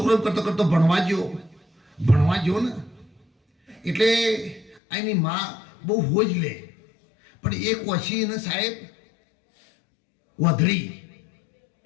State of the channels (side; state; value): right; drops out; at 4.8 s